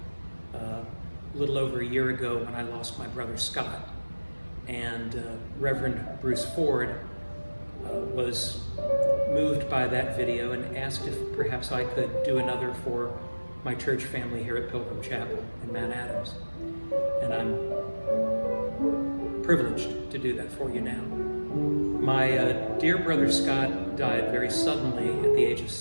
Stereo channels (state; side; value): inverted; both; correlation -1.00